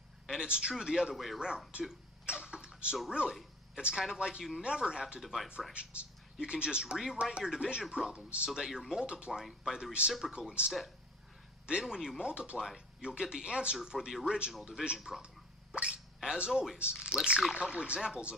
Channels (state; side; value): normal; both; correlation 0.44